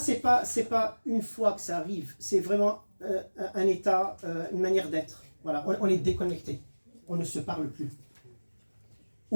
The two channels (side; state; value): both; inverted; correlation -1.00